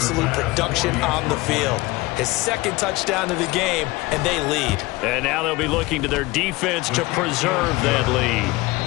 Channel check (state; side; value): quieter; right; 21.2 dB